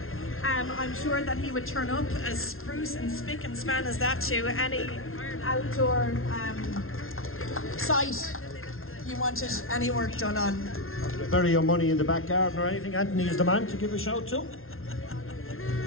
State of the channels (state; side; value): late; right; 0.61 ms